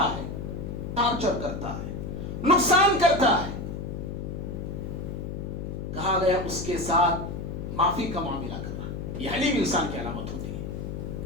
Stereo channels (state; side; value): noise; left; hum, 6 dB below the sound